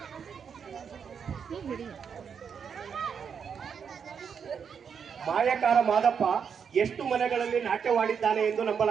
ಮಾಯಕಾರ ಮಾದಪ್ಪ ಎಷ್ಟು ಮನೆಗಳಲ್ಲಿ ನಾಟ್ಯವಾಡಿದ್ದಾನೆ ಎಂದು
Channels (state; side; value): quieter; left; 6.9 dB